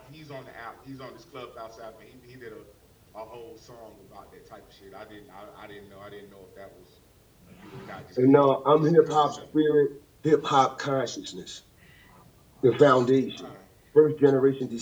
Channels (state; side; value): identical; both; correlation 1.00